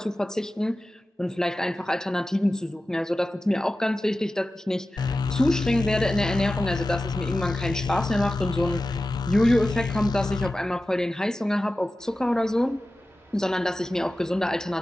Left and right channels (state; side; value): normal; both; correlation 0.94